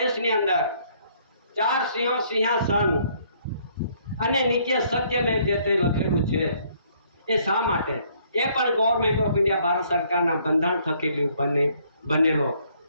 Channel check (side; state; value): both; inverted; correlation -0.65